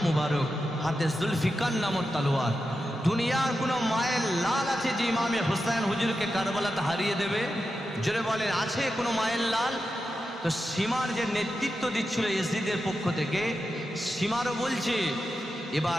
মুবারক, হাতে জুলফিকার নামক তলোয়ার। দুনিয়ার কোনো মায়ের লাল আছে যে ইমামে হুসাইন হুজুরকে কারবালাতে হারিয়ে দেবে? জোরে বলেন, আছে কোনো মায়ের লাল? তো সীমার যে নেতৃত্ব দিচ্ছিল ইয়াজিদের পক্ষ থেকে, সীমারও বলছে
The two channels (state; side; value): normal; both; correlation 0.89